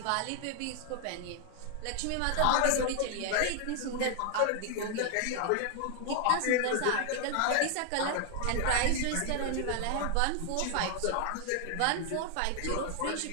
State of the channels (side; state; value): both; different; correlation 0.00